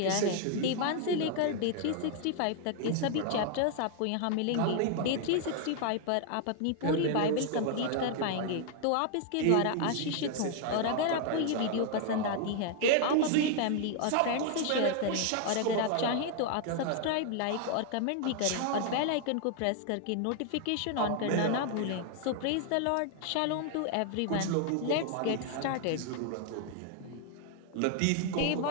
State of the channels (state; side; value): different; both; correlation 0.00